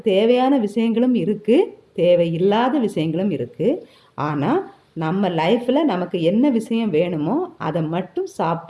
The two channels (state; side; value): identical; both; correlation 1.00